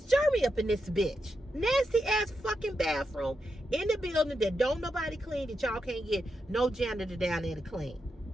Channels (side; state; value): both; normal; correlation 0.86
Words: Jeremy up in this bitch. Nasty ass fucking bathroom in the building that don't nobody clean, that y'all can't get no janitor down there to clean.